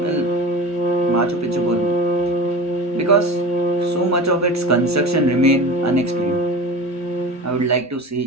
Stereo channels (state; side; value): normal; both; correlation 0.32